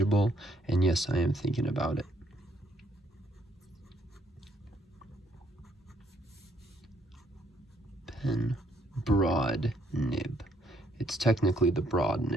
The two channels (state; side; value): normal; both; correlation 0.68